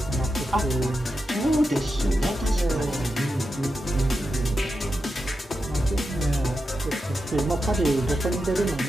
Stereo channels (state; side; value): normal; both; correlation 0.88